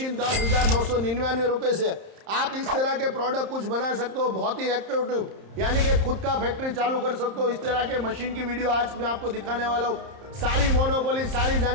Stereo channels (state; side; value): late; left; 30 ms